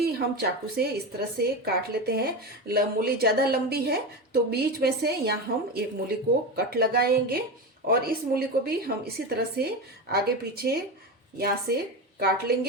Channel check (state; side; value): normal; both; correlation 0.20